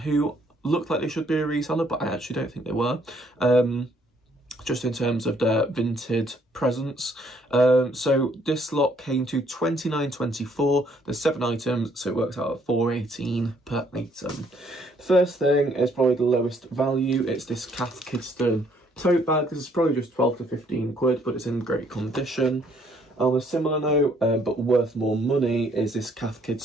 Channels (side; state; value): both; normal; correlation 0.66